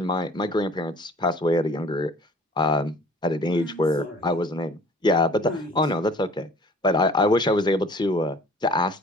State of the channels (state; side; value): normal; both; correlation 0.50